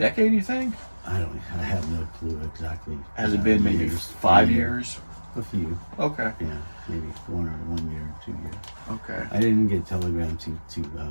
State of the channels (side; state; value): both; inverted; correlation -1.00